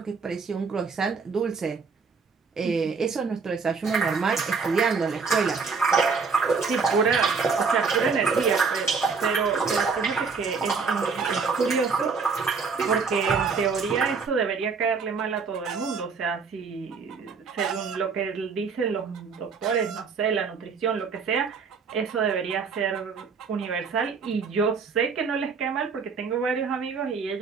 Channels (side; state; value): left; quieter; 5.1 dB